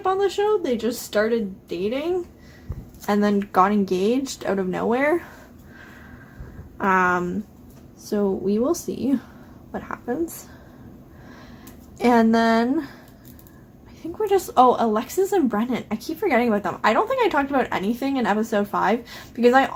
on the show. They just started dating and then got engaged out of nowhere. So we will see what happens. And then I think we're just, Alexis and Brennan. I keep forgetting about them. I don't think I talked about anything in episode 5 because I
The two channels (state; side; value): identical; both; correlation 1.00